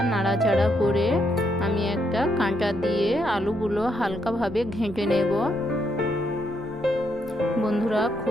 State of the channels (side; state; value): left; noise; hum, 26 dB below the sound